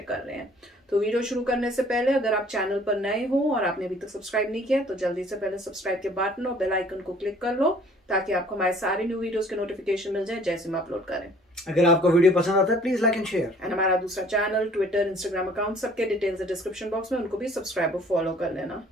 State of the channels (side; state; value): both; normal; correlation 0.55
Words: कर रहे हैं। तो वीडियो शुरू करने से पहले अगर आप चैनल पर नए हो और आपने अभी तक सब्सक्राइब नहीं किया तो जल्दी से पहले सब्सक्राइब के बटन और बेल आइकन को क्लिक कर लो, ताकि आपको हमारे सारे न्यू वीडियोस के नोटिफिकेशन मिल जाए जैसे हम अपलोड करें। अगर आपको वीडियो पसंद आता है please like and share. And हमारा दूसरा चैनल, ट्विटर, इंस्टाग्राम अकाउंट, सबके डिटेल्स है डिस्क्रिप्शन बॉक्स में, उनको भी सब्सक्राइब और फॉलो कर लेना।